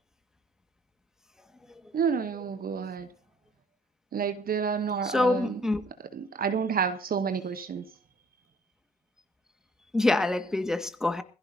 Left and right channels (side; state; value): both; normal; correlation 0.61